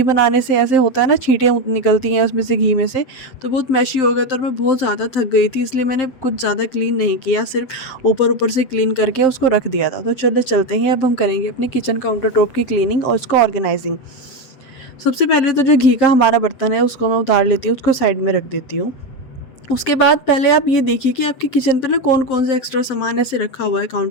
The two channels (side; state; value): right; late; 7.6 ms